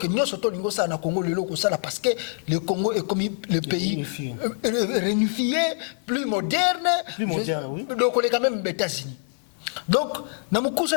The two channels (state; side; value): silent; right; 62 dB below the other